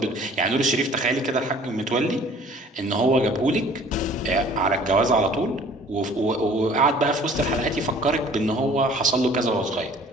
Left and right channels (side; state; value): both; normal; correlation 0.51